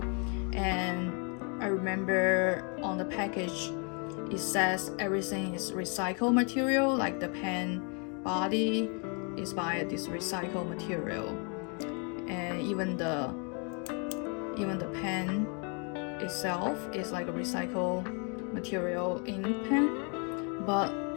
and I remember on the package it says everything is recycled material, like the pen body is by this recycled material, and even the pen itself is like a recycled material ink pen. But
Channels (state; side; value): quieter; right; 36.4 dB